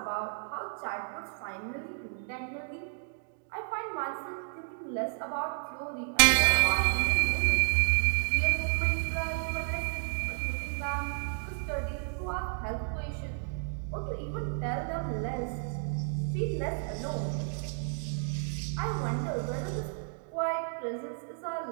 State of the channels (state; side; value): silent; left; digital silence